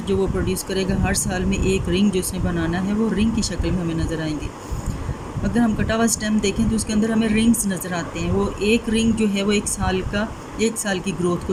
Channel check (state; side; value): identical; both; correlation 1.00